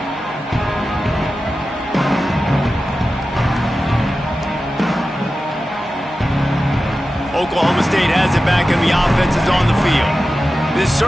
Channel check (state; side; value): normal; both; correlation 0.93